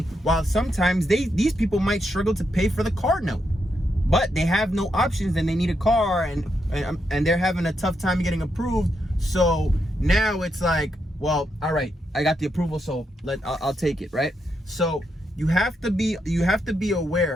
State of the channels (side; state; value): both; normal; correlation 0.82